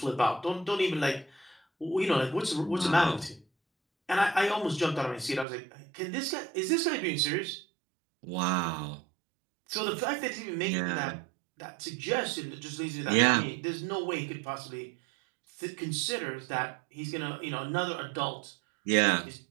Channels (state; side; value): drops out; left; at 5.5 s